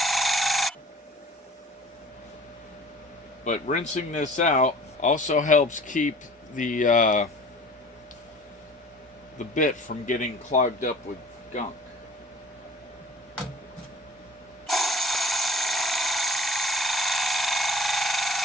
But rinsing this out also helps keep the bit from getting clogged up with gunk.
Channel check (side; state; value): both; normal; correlation 0.46